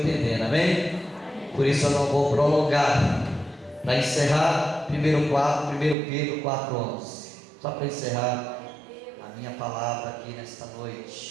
amém? Por isso eu não vou prolongar. Para encerrar, 1 Pedro 4,11, só para encerrar a minha palavra aqui nesta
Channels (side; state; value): left; drops out; at 6.0 s